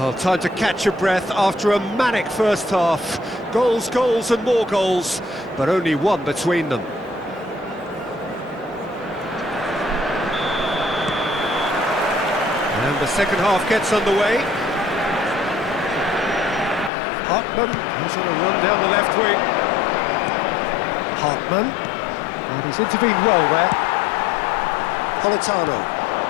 time to catch your breath after a manic first half. Goals, goals and more goals, but only one between them. And the second half gets underway. Hartman, who's on a run down the left wing. Hartman, and he's intervened well there. Politano.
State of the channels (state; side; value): drops out; right; at 16.9 s